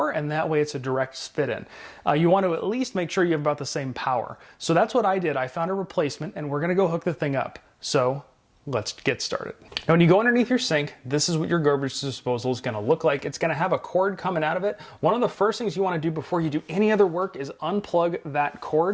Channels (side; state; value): both; identical; correlation 1.00